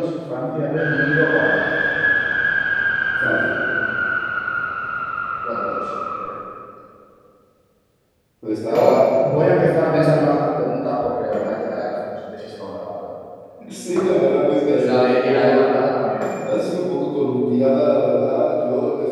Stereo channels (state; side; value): identical; both; correlation 1.00